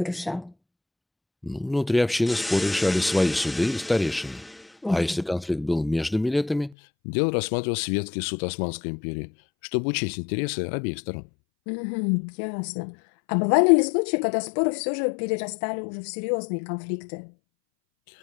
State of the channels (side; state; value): right; drops out; at 6.8 s